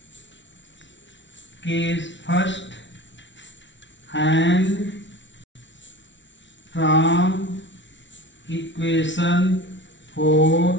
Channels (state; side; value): late; right; 0.54 ms